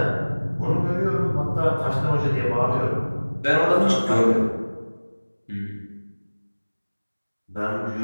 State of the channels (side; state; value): both; inverted; correlation -1.00